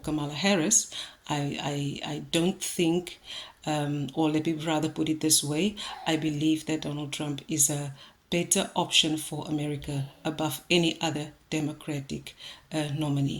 Kamala Harris. I don't think, or let me rather put it this way, I believe that Donald Trump is a better option for America above any other Democratic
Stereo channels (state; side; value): identical; both; correlation 1.00